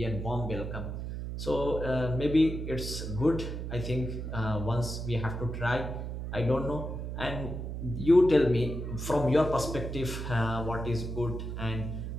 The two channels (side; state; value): right; noise; hum, 5 dB below the sound